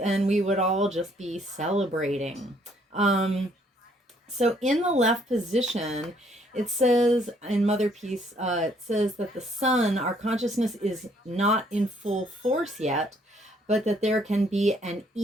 we would all just be celebrating. So in the left position, it says in Mother Peace, it says that the sun, our consciousness, is not in full force yet, but that there can be an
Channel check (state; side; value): normal; both; correlation 0.66